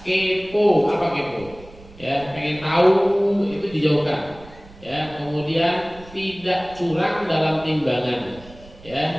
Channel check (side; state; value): right; noise; rumble, 21 dB below the sound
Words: kepo. Apa kepo? Ya, pengen tahu itu dijauhkan. Ya, kemudian tidak curang dalam timbangan.